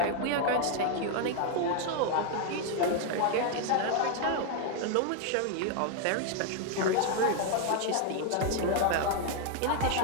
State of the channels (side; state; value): both; different; correlation 0.00